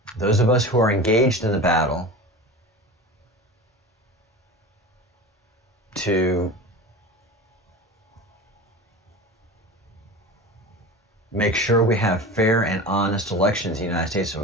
Those of us who are engaged in the battle to make sure we have fair and honest elections in the United States of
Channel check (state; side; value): normal; both; correlation 0.32